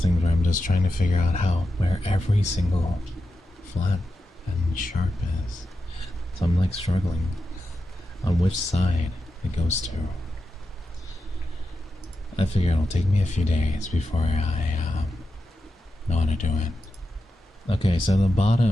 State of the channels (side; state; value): both; normal; correlation 0.90